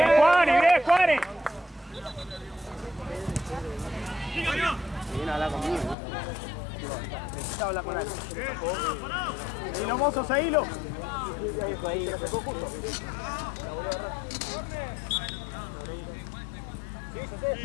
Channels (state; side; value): drops out; right; at 6.0 s